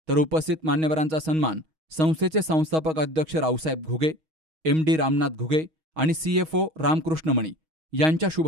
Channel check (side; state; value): left; late; 6.3 ms